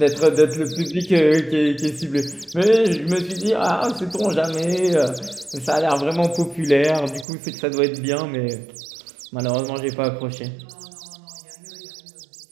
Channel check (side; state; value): left; drops out; at 7.2 s